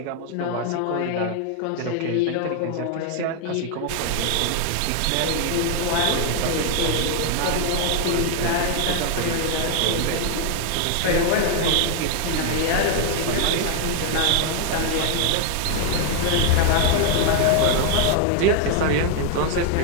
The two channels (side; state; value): both; different; correlation 0.00